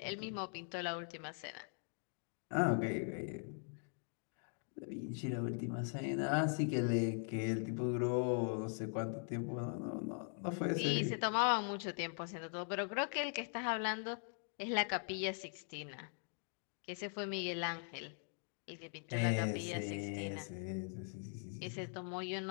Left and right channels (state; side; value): silent; right; 50 dB below the other